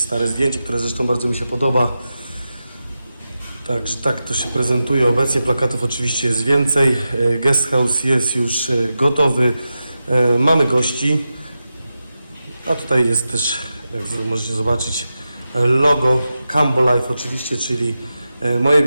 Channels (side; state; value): both; inverted; correlation -0.91